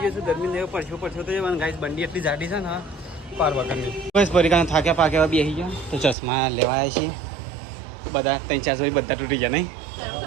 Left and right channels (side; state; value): left; drops out; at 6.2 s